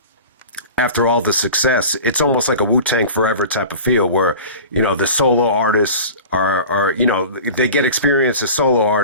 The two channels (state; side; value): inverted; both; correlation -0.37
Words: after all the success, it's almost like a Wu-Tang Forever type of feel where, the solo artists are they get experience as solo